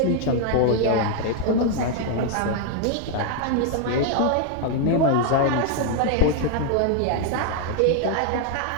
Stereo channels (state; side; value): different; both; correlation 0.00